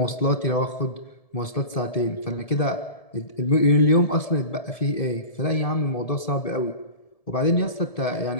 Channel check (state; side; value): late; right; 1.7 ms